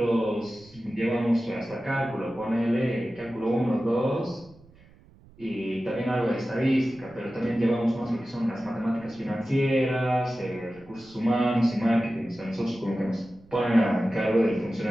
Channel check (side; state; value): right; noise; rumble, 26 dB below the sound